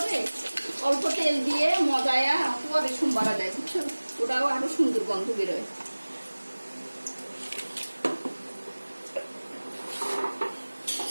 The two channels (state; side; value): inverted; both; correlation -1.00